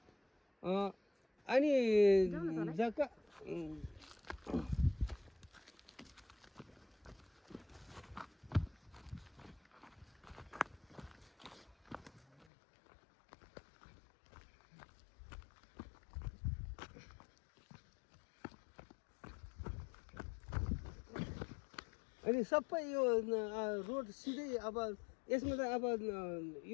अनि जग्गा अनि सबै यो रोड सिधै अब यसमा त अब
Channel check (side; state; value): right; drops out; at 12.5 s